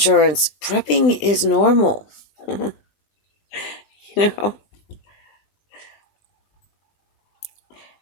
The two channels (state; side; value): late; right; 20 ms